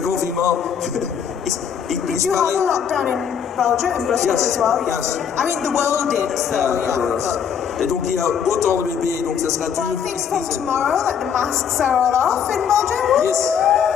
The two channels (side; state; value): right; quieter; 7.8 dB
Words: confinement. Did you have a lockdown in Belgium, in Brussels as well? Yes. I mean, the world did, so Et donc il y a autant de bébés, donc ça sera dur. I think from tomorrow, the masks are all off in Belgium. Yes.